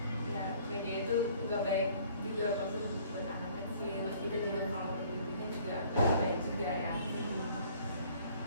Ya media itu nggak baik juga buat anak kecil, terus kita juga kalau pendidikannya juga nggak baik juga ya.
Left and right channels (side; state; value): both; inverted; correlation -0.56